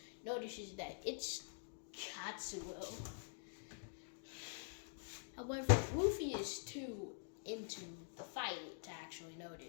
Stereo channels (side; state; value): right; silent; digital silence